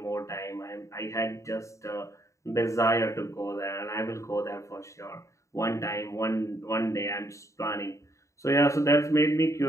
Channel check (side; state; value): right; late; 0.15 ms